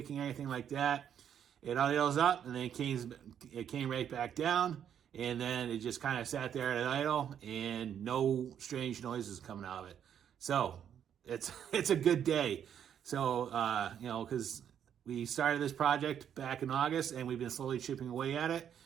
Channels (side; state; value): left; quieter; 9.0 dB